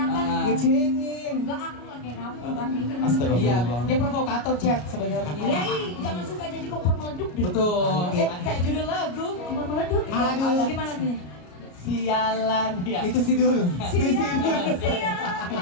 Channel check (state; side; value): late; right; 33 ms